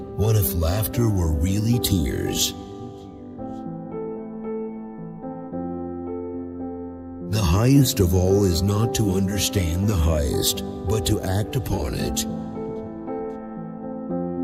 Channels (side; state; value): both; identical; correlation 1.00